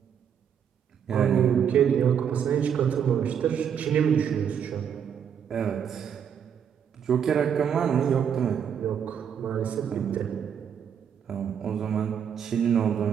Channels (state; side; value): quieter; left; 8.1 dB